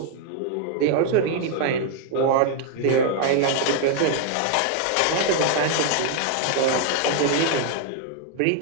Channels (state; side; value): different; both; correlation 0.00